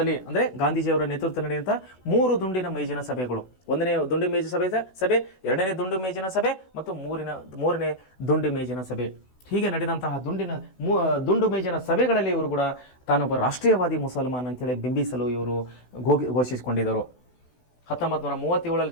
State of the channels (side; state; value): right; late; 16 ms